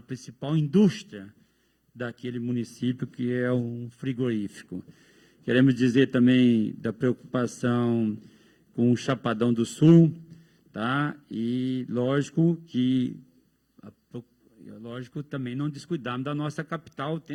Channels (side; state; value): both; identical; correlation 1.00